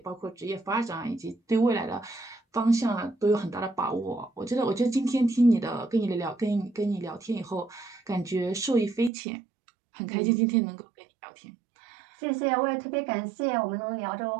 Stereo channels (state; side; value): drops out; left; at 9.1 s